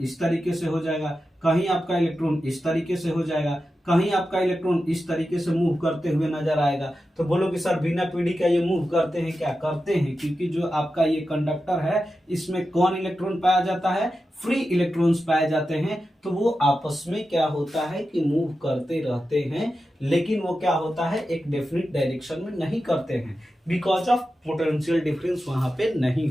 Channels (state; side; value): normal; both; correlation 0.91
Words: इस तरीके से हो जाएगा, कहीं आपका इलेक्ट्रॉन इस तरीके से हो जाएगा, कहीं आपका इलेक्ट्रॉन इस तरीके से मूव करते हुए नजर आएगा। तो बोलो कि सर बिना पीडी का ये मूव करते हैं क्या, करते हैं, क्योंकि जो आपका ये कंडक्टर है इसमें कौन इलेक्ट्रॉन पाया जाता है, फ्री इलेक्ट्रॉन्स पाए जाते हैं, तो वो आपस में क्या होता है कि मूव करते रहते हैं, लेकिन वो क्या होता है, एक डेफिनिट डायरेक्शन में नहीं करते हैं, बिकॉज ऑफ पोटेंशियल डिफरेंस वहां पे नहीं